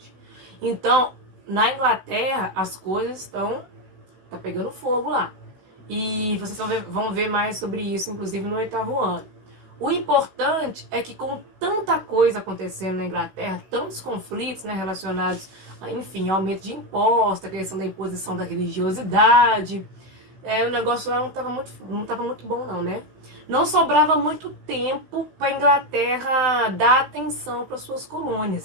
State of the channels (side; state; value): left; late; 16 ms